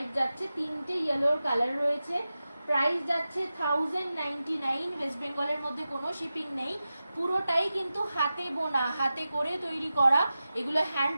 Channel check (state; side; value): inverted; both; correlation -0.94